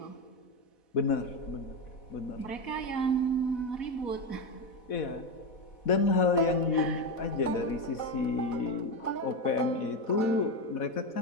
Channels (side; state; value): right; late; 4.1 ms